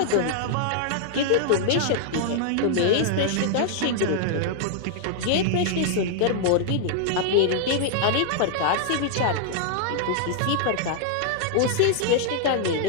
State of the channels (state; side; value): different; both; correlation -0.01